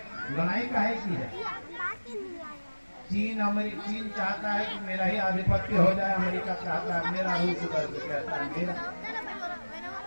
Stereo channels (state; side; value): inverted; both; correlation -1.00